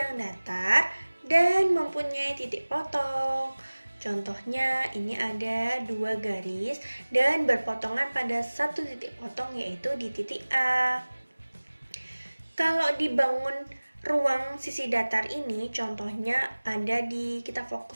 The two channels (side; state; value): both; inverted; correlation -1.00